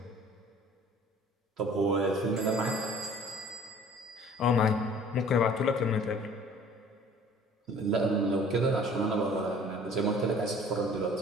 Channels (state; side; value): normal; both; correlation 0.51